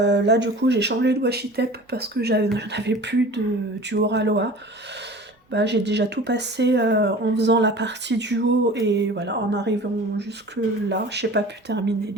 du coup, j'ai changé de washi tape parce que j'en avais plus du Oraloa. Bah, j'ai déjà tout passé en faisant la partie du haut et voilà, en arrivant jusque là, je n'ai pas pu terminer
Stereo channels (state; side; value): normal; both; correlation 0.41